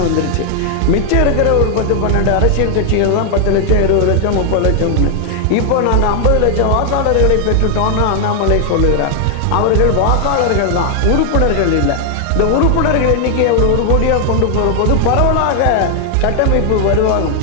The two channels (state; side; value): different; both; correlation 0.00